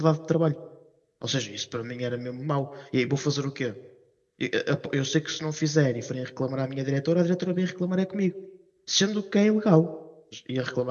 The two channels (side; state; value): both; identical; correlation 1.00